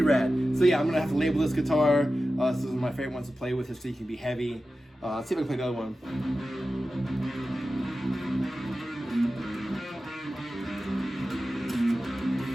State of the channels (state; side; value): normal; both; correlation 0.94